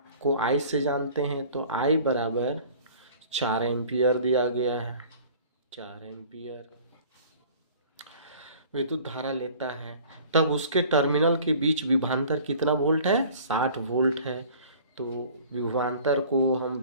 को आई से जानते हैं, तो आई बराबर 4 एम्पीयर दिया गया है। 4 एम्पीयर विद्युत धारा लेता है, तब उसके टर्मिनल के बीच विभवांतर कितना वोल्ट है? 60 वोल्ट है। तो विभवांतर को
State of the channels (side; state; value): both; inverted; correlation -0.47